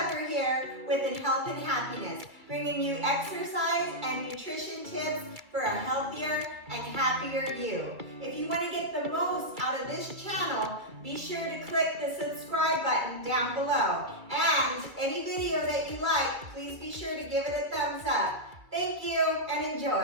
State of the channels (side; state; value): left; late; 2.3 ms